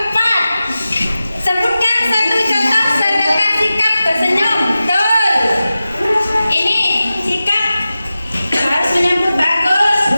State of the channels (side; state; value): both; inverted; correlation -0.94